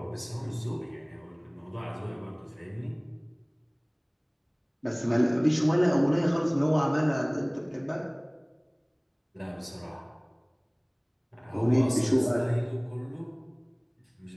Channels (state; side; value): identical; both; correlation 1.00